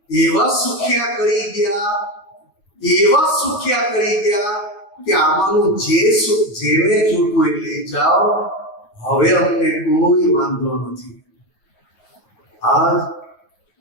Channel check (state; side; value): late; right; 9.6 ms